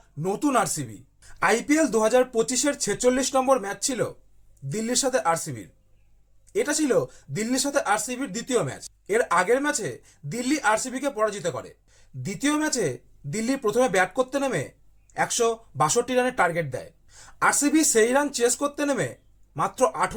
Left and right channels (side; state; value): both; identical; correlation 1.00